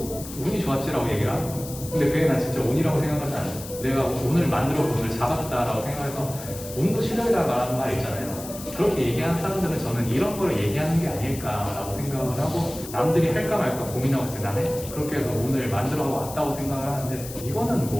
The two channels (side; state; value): left; noise; hiss, 13 dB below the sound